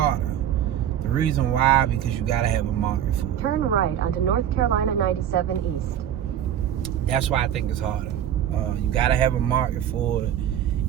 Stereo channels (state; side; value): quieter; left; 10.4 dB